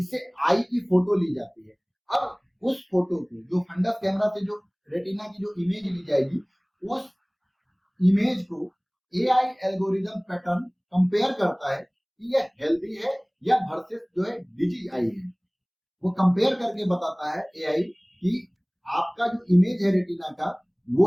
आई की फोटो ली जाती है। अब उस फोटो को, जो फंडस कैमरा से जो रेटिना की जो इमेज ली जाएगी, उस इमेज को एआई एल्गोरिदम पैटर्न कंपेयर करता है कि यह हेल्दी है या वर्सेस जो है डिजीज आई है। वो कंपेयर करके बताता है एआई कि आपका जो इमेज है रेटिना का, वो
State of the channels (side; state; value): both; identical; correlation 1.00